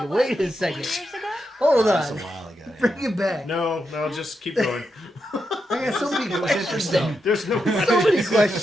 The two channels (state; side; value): normal; both; correlation 0.85